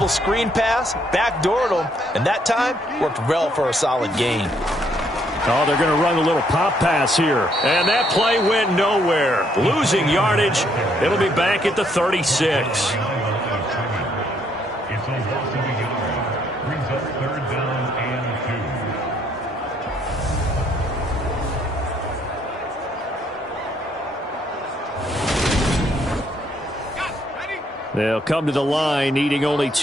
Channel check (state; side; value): normal; both; correlation 0.69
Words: screen pass, backdoored them, and that time worked well for a solid gain. Oh, they're going to run a little pop pass here. And that play went nowhere. Losing yardage. It'll be back at the 36. They'll come to the line, needing only